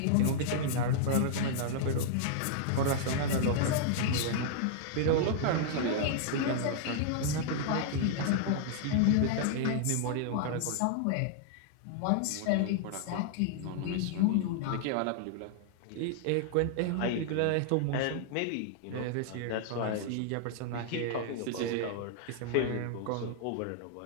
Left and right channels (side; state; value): both; different; correlation -0.01